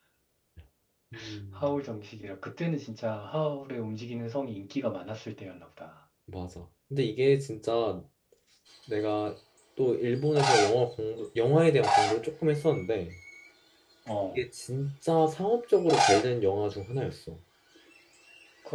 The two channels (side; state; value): both; identical; correlation 1.00